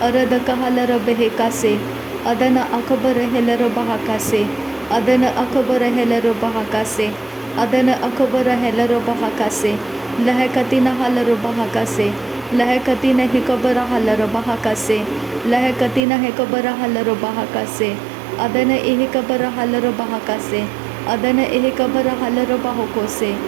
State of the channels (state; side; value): drops out; left; at 16.0 s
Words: अरद कहालर बेहेकासे अदन अकबर हेलर बहाकासे अदन अकबर हेलर बहाकासे अदन अकबर हेलर बहाकासे लहकतीन हालर बहाकासे लहकतीन हेकबर हालर बहाकासे लहकतीन हेकबर हालर बहाकासे अदन एहकबर हालर बहाकासे अदन एहकबर हालर बाहोकोसे